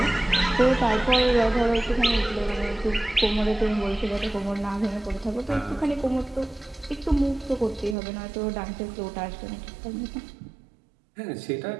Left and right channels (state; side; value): drops out; left; at 8.0 s